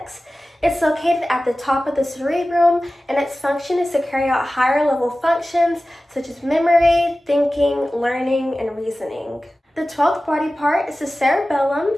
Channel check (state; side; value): normal; both; correlation 0.96